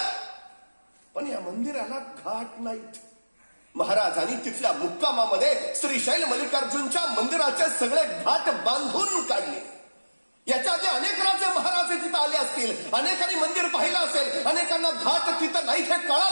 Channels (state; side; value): inverted; both; correlation -1.00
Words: पण या मंदिराला घाट नाहीत. महाराजांनी तिथल्या मुक्कामामध्ये श्रीशैल मल्लिकार्जुनच्या मंदिराचे सगळे घाट बांधून काढले. याच्या आधी अनेक राजे महाराज तिथं आले असतील, अनेकांनी मंदिर पाहिलं असेल, अनेकांना घाट तिथं नाही हे